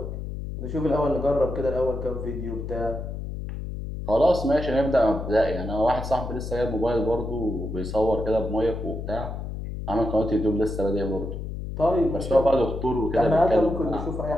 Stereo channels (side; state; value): left; noise; hum, 6 dB below the sound